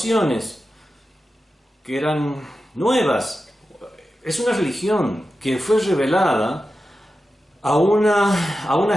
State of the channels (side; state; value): both; normal; correlation 0.92